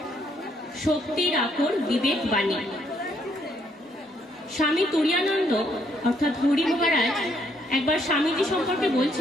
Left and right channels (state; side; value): normal; both; correlation 0.71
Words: শক্তির আকর বিবেক বাণী। স্বামী তুরীয়ানন্দ অর্থাৎ হরি মহারাজ একবার স্বামীজি সম্পর্কে